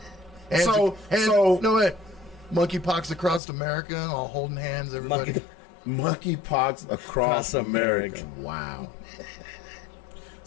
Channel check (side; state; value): right; drops out; at 3.4 s